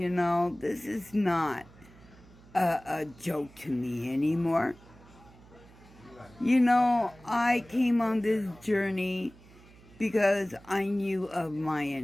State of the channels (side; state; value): right; noise; hum, 24 dB below the sound